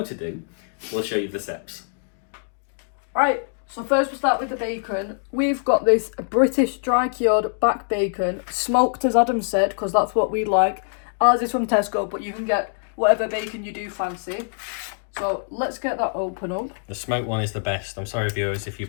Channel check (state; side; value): silent; right; digital silence